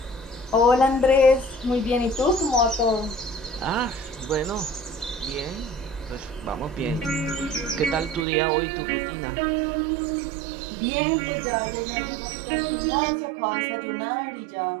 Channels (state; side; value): drops out; left; at 8.2 s